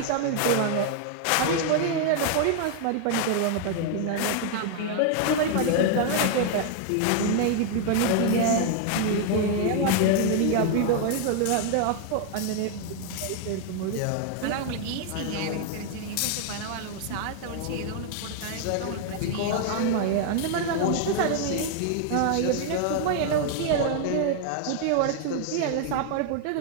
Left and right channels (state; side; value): different; both; correlation 0.00